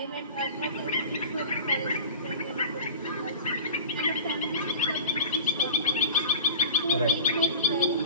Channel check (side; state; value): both; inverted; correlation -0.35